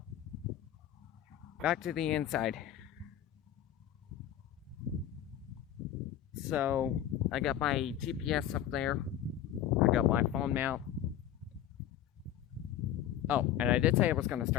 back to the inside. So, I got my GPS up there. I got my phone mount. Oh, and I did say I was going to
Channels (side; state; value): right; quieter; 11.2 dB